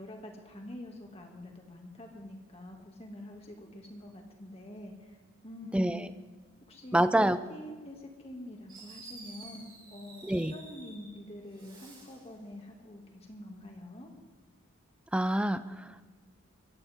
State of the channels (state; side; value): normal; both; correlation 0.91